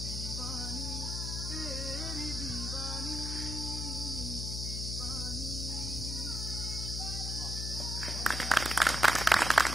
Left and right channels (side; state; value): left; noise; hum, 3 dB below the sound